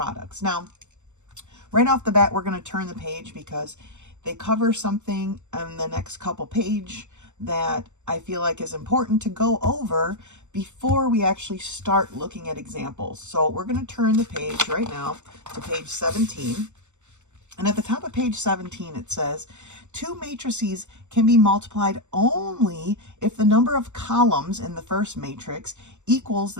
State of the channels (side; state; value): left; late; 0.84 ms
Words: Now, right off the bat, we're going to turn the page because they cover something in the next couple pages that I feel like is important to go over before we actually start looking at examples. So we're going to turn the page right now to page 17. And at the top of page 17, it says, two matrices can be multiplied only if the number of columns in the first matrix equals